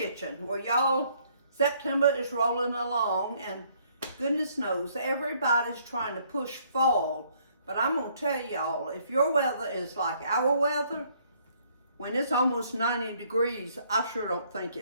Well, y'all, September is rolling along, and goodness knows everybody's trying to push fall. But I'm going to tell y'all, if your weather is like our weather, when it's almost 90 degrees, I sure don't think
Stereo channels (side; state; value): both; inverted; correlation -0.65